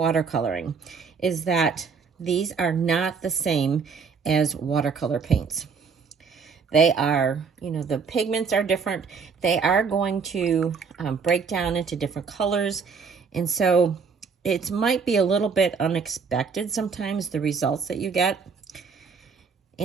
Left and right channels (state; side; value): quieter; left; 5.6 dB